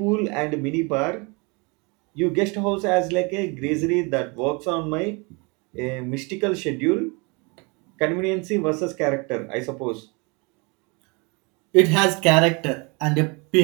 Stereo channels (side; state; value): left; quieter; 29.7 dB